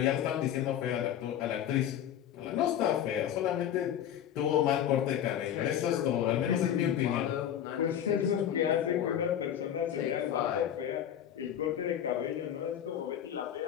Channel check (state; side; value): quieter; right; 10.2 dB